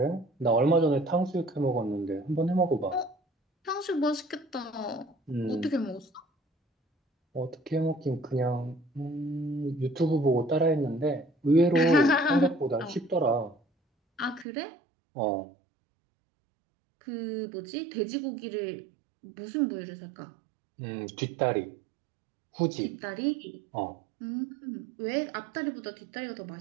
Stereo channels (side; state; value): left; drops out; at 14.5 s